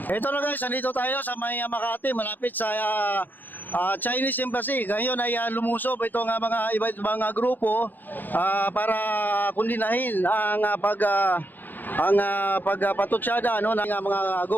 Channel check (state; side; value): late; right; 0.087 ms